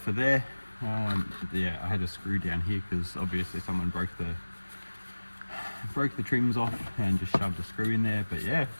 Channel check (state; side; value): inverted; both; correlation -1.00